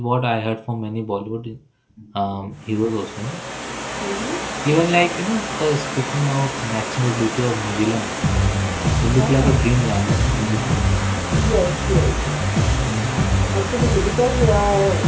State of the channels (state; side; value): identical; both; correlation 1.00